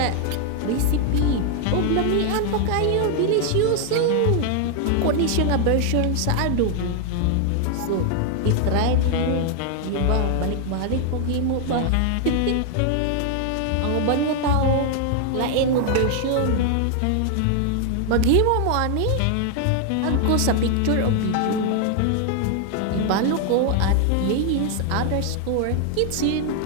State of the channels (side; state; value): both; different; correlation 0.00